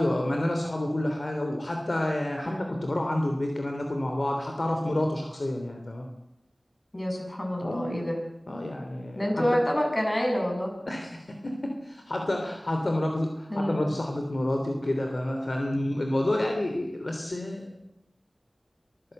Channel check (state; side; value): normal; both; correlation 0.98